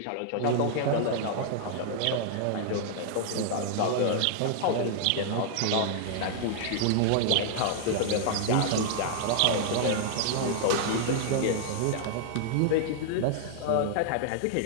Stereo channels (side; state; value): both; different; correlation -0.01